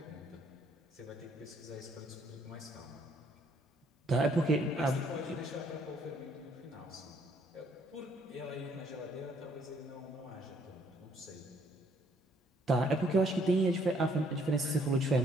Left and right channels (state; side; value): normal; both; correlation 0.66